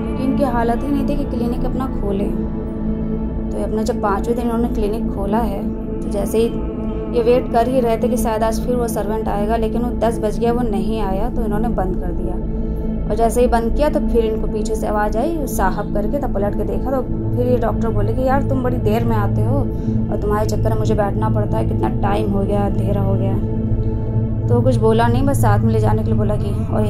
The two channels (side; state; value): both; identical; correlation 1.00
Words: इनकी हालत ही नहीं थी कि क्लिनिक अपना खोले। तो अपना जब 5वें दिन इन्होंने क्लिनिक खोला है तो जैसे ही ये वेट कर ही रहे थे कि शायद आज फिर वो सर्वेंट आएगा, लेकिन वो 10 बज गया, वो नहीं आया तो इन्होंने बंद कर दिया। और जैसे ही बंद किया तो फिर इनको पीछे से आवाज़ आई साहब करके, तब पलट के देखा तो फिर ये डॉक्टर बोले कि यार तुम बड़ी देर में आते हो और तुम्हारे चक्कर में मुझे बैठना पड़ता है, कितना टाइम हो गया, अंधेरा हो गया। तो कुछ बोला नहीं, बस साथ में ले जाने के लिए बोला कि, और